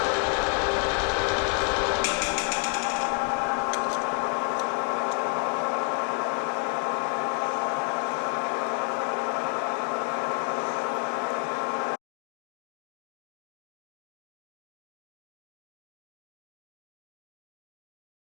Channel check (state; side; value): quieter; right; 37.6 dB